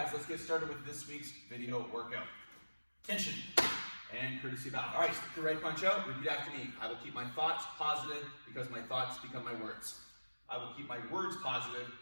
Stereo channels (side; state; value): both; inverted; correlation -1.00